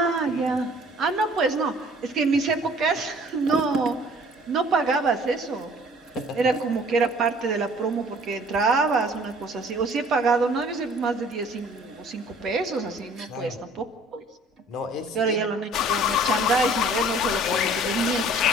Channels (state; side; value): normal; both; correlation 0.53